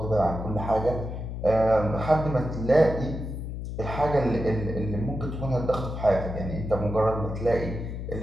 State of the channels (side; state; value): left; noise; hum, 6 dB below the sound